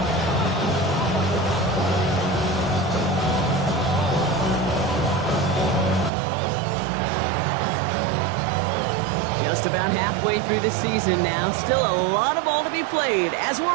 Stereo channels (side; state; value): left; drops out; at 6.1 s